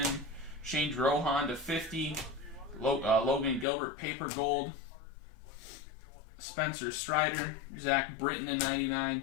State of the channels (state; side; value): drops out; right; at 3.7 s